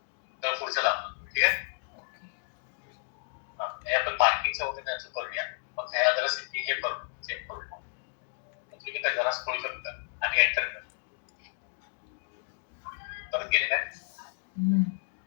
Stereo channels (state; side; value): silent; right; 56 dB below the other